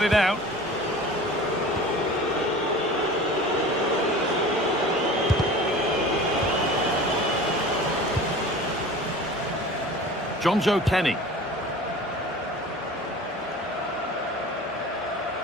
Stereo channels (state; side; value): normal; both; correlation 0.39